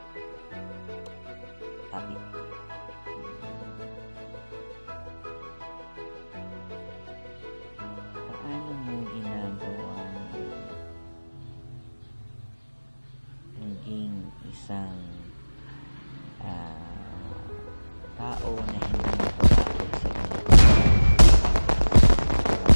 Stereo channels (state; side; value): inverted; both; correlation -1.00